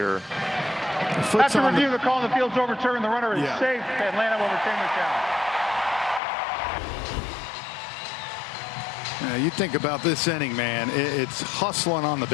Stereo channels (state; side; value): drops out; right; at 6.2 s